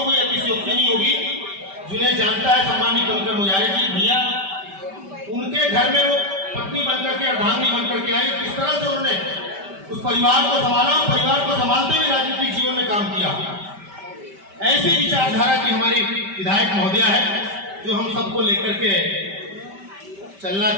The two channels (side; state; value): left; late; 5.1 ms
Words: कोई अतिशयोक्ति नहीं होगी, जिन्हें जानता है सम्माननीय कनकर मुजारे जी भैया, उनके घर में वो पत्नी बनकर के, अर्धांगिनी बनकर के आई। किस तरह से उन्होंने उस परिवार को संभाला, परिवार को संभालते हुए राजनीतिक जीवन में काम किया। ऐसी विचारधारा की हमारी विधायक महोदया है जो हम सबको लेकर के चलना